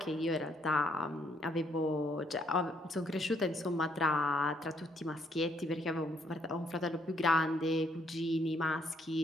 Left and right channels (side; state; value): both; normal; correlation 0.70